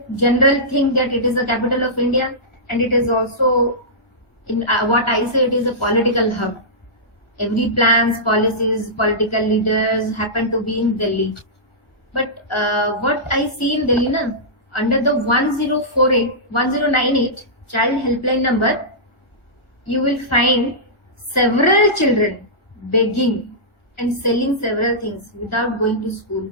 General think that it is a capital of India, and it is also, in what I say, it is a political hub. Every plans, policies, political leaders happen to be in Delhi. But what I see in Delhi, na, under the 1098 child helpline number, you will find several children begging and selling several things without going to school.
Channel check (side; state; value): right; late; 1.5 ms